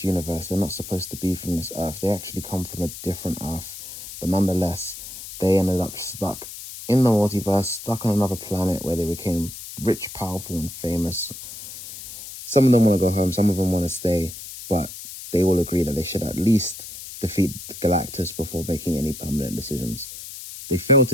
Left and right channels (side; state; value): left; noise; hiss, 12 dB below the sound